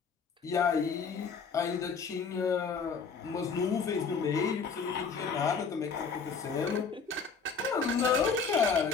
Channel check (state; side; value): quieter; right; 5.5 dB